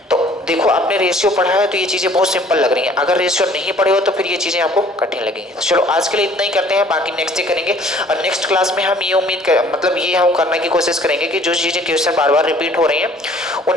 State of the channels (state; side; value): normal; both; correlation 0.54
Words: तो देखो, आपने रेशियो पढ़ा है तो ये चीज़ें बहुत सिंपल लग रही हैं, अगर रेशियो नहीं पढ़े हो तो फिर ये चीज़ें आपको कठिन लगेंगी। तो चलो आज के लिए इतना ही करते हैं, बाकी नेक्स्ट डे करेंगे। और नेक्स्ट क्लास में हम ये उम्मीद कर मतलब ये हम करने की कोशिश करेंगे कि जो चीज़ें क्वेश्चन बार बार रिपीट हो रही हैं